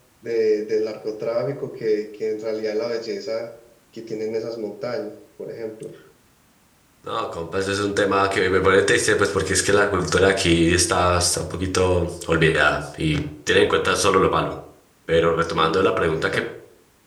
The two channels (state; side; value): identical; both; correlation 1.00